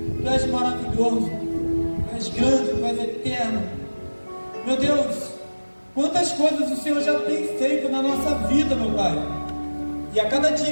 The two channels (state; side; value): inverted; both; correlation -1.00